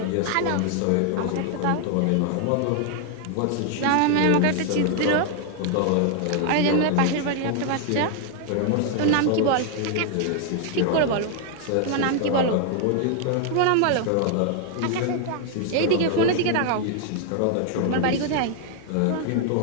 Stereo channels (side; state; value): both; different; correlation 0.00